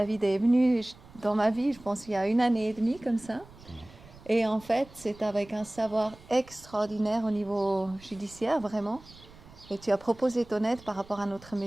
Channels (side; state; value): right; noise; rumble, 22 dB below the sound